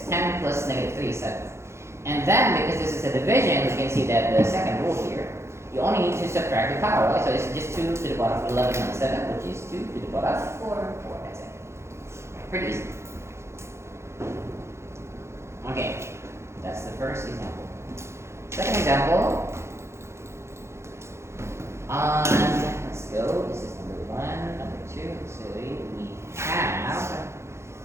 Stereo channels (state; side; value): late; left; 0.13 ms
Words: 10 plus negative 3 is 7. And then, because this is a division, we can see that the second rule here, you only need to subtract the power, right? So it's just 2 to the power of 11 minus 7, which is 2 to the power of 4. That's it. Pretty easy. Okay, that's the first example. Second example, let's go, this is number 1, number 2, so we have,